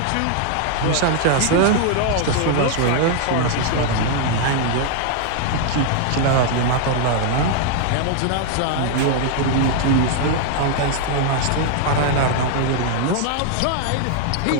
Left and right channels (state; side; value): different; both; correlation 0.00